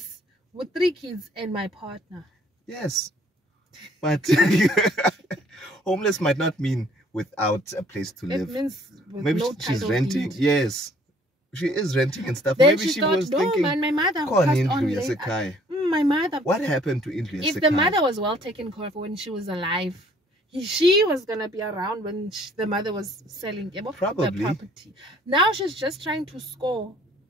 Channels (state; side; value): normal; both; correlation 0.59